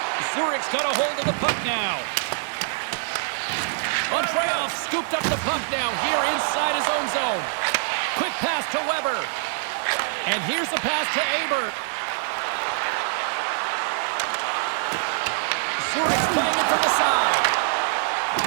Zurich's got a hold of the puck now. Andreoff scooped up the puck now here inside his own zone. Quick pass to Weber. And here's the pass to Aber. Zurich's playing it from the side.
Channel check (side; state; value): left; silent; 62 dB below the other